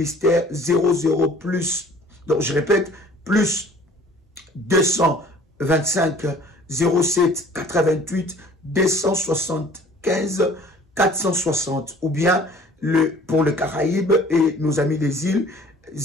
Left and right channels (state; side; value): normal; both; correlation 0.51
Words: 00 plus, donc je répète, plus 225 07 88 275 460, ou bien pour le Caraïbe et nos amis des îles